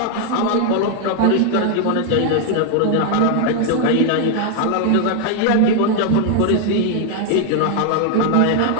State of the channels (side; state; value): both; different; correlation 0.00